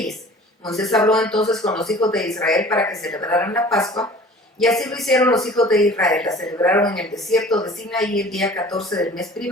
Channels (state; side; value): normal; both; correlation 0.46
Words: Moisés habló entonces con los hijos de Israel para que celebraran la Pascua, y así lo hicieron los hijos de Israel. La celebraron en el desierto de Sinaí el día 14 del mes